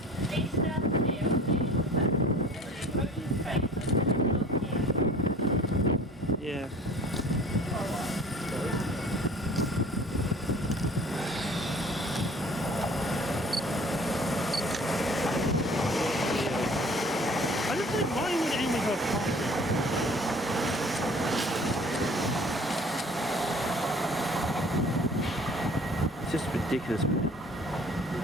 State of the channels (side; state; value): both; normal; correlation 0.49